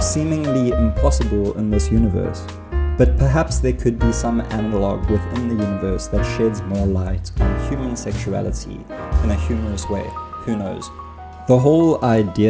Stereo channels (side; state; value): both; identical; correlation 1.00